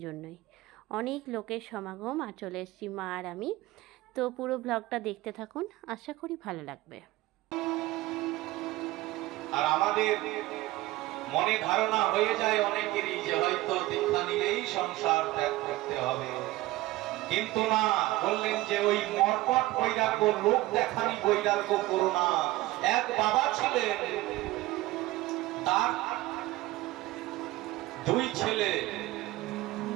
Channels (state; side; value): quieter; left; 18.0 dB